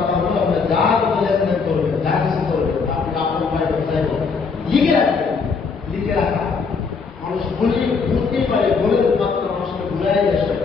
হলো, আপনি যা কোনো লেনদেন করবেন, যা কিছু করবেন, আপনি আপনার উপায় ব্যবসায় করবেন, লিখে রাখবেন। লিখে রাখা মানুষ বুঝতেই পারে, বলে মাত্র মানুষকে ভুলাই দেয়।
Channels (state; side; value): quieter; right; 5.1 dB